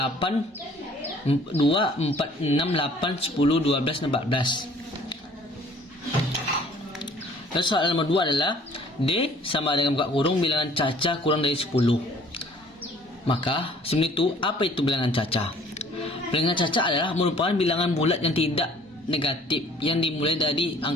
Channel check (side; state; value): both; normal; correlation 0.55